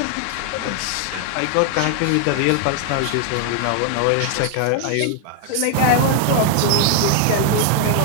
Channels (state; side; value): different; both; correlation 0.00